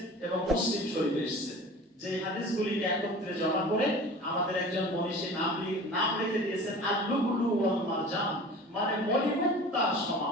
এবং মুসলিম শরীফে এসেছে। যে হাদিসগুলিকে একত্রে জমা করে আমাদের একজন মনীষী নাম রেখে দিয়েছেন আল-লুবলু ওয়াল মারজান, মানে মণিমুক্তার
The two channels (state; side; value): normal; both; correlation 0.40